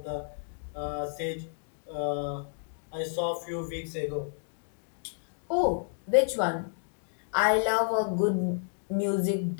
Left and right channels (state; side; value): silent; right; digital silence